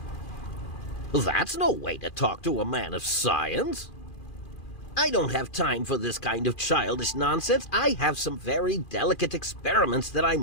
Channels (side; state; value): right; late; 2.4 ms